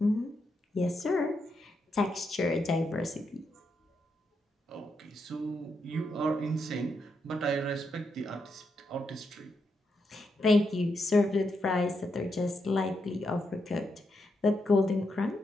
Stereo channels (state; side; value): normal; both; correlation 0.82